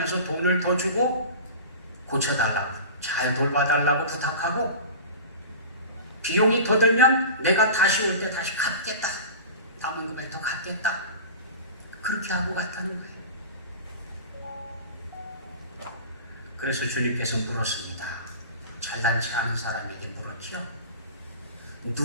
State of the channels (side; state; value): both; inverted; correlation -0.34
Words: 돈을 더 주고 고쳐달라고, 잘 돌봐달라고 부탁하고 비용이 더 들면 내가 다시 올 때 다시 갚겠다, 남은 금액 더 갚겠다, 그렇게 하고 갔다는 거예요. 그래서 주님께서 물었습니다. 잘난치 않은 사람에게 물었죠.